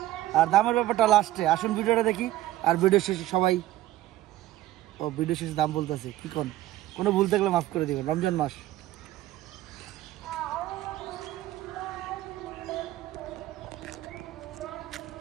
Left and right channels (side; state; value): left; quieter; 15.0 dB